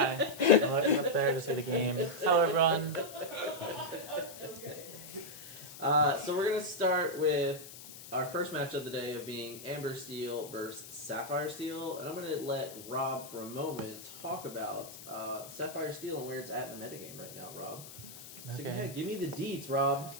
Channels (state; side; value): noise; left; hiss, 15 dB below the sound